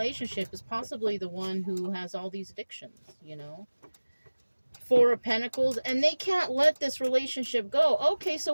is possibly the one who has all these addictions, you know. Four of Pentacles, and they can't let this relationship go. Okay, so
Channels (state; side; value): inverted; both; correlation -1.00